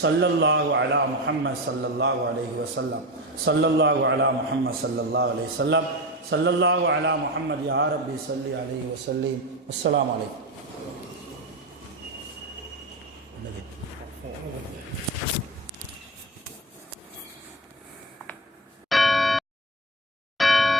ஸல்லல்லாஹு அலா முஹம்மத் ஸல்லல்லாஹு அலைஹி வஸல்லம். ஸல்லல்லாஹு அலா முஹம்மத் ஸல்லல்லாஹு அலைஹி வஸல்லம். ஸல்லல்லாஹு அலா முஹம்மத் யா ரப்பி ஸல்லி அலைஹி வஸல்லிம். அஸ்ஸலாமு அலைக்கும்.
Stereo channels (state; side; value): normal; both; correlation 0.21